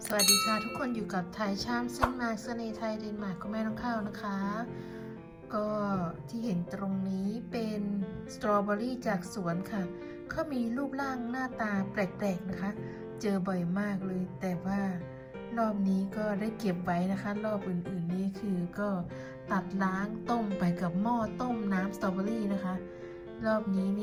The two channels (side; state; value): both; identical; correlation 1.00